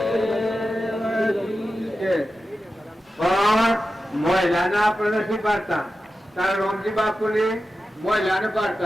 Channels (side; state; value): both; normal; correlation 0.92